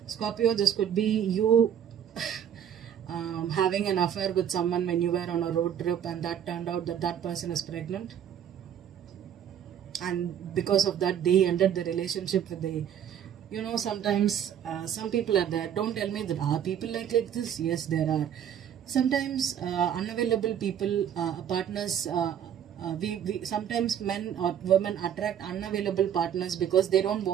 Scorpio, this could be you having an affair with someone when you were on a road trip, and that turned out that that person is pregnant, and because of that they ended the relationship with the, you know, sometimes some people are there. Don't tell me that are people like this. Yes, there are sometimes unavailable people, partners. We sometimes men or women attract unavailable partners because they don't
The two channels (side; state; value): left; quieter; 9.3 dB